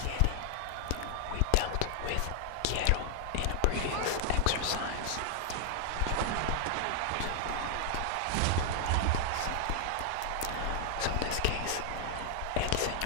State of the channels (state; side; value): different; both; correlation 0.00